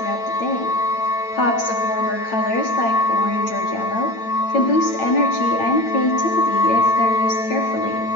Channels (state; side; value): late; right; 8.9 ms